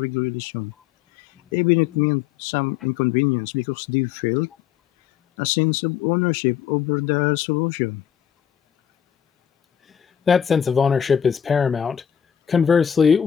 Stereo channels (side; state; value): right; quieter; 8.9 dB